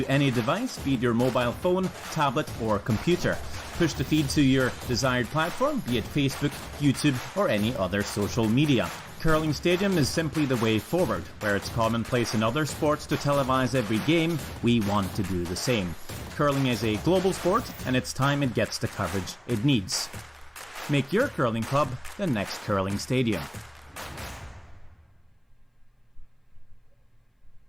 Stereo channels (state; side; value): identical; both; correlation 1.00